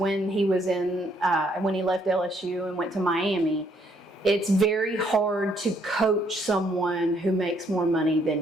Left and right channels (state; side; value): normal; both; correlation 0.69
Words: he was when he left LSU and went to Miami. It's very hard to coach someone who makes more money